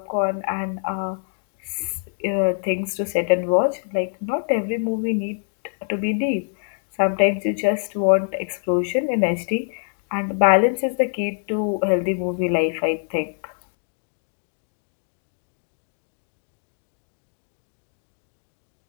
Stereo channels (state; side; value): silent; right; digital silence